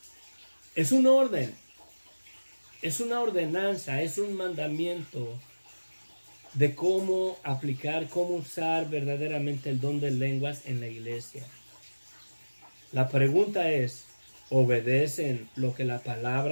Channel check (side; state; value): both; inverted; correlation -1.00